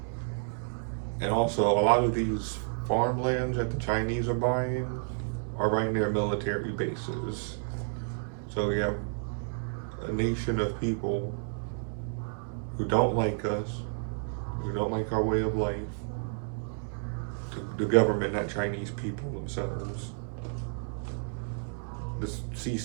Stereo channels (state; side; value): silent; left; 57 dB below the other